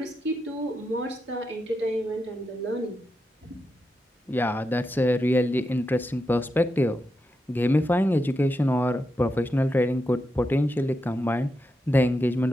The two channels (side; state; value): both; normal; correlation 0.86